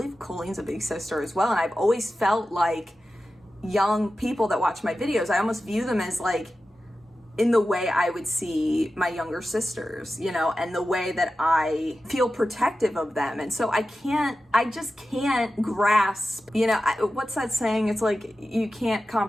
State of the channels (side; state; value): both; normal; correlation 0.93